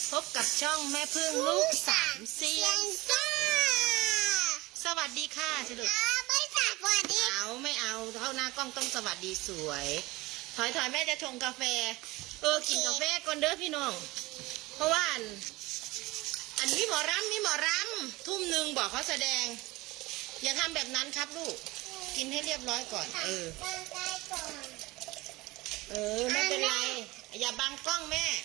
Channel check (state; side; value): quieter; left; 21.0 dB